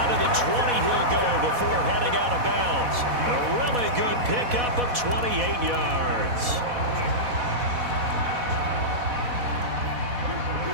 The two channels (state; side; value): late; left; 4.1 ms